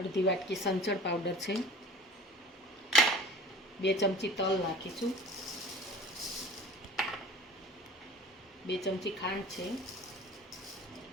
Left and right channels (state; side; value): normal; both; correlation 0.44